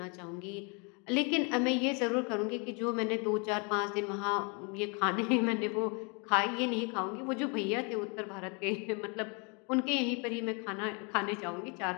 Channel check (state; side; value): quieter; right; 33.5 dB